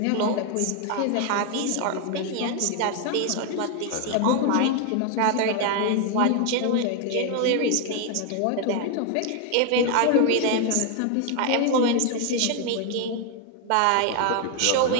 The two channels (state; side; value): different; both; correlation 0.01